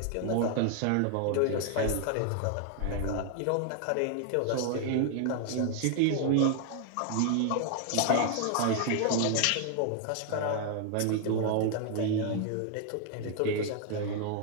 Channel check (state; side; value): different; both; correlation 0.00